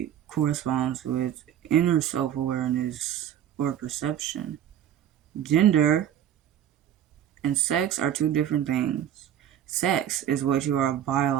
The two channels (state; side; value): quieter; left; 10.4 dB